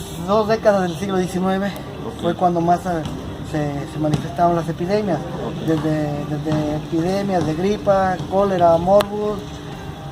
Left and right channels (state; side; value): identical; both; correlation 1.00